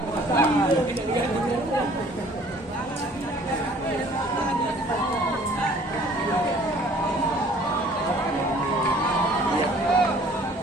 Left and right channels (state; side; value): normal; both; correlation 0.54